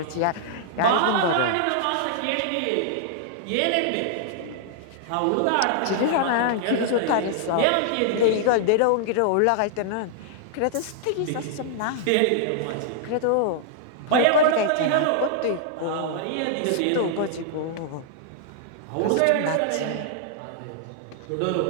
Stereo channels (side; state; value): both; different; correlation -0.01